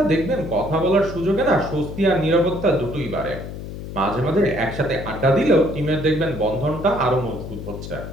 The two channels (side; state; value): left; noise; hum, 9 dB below the sound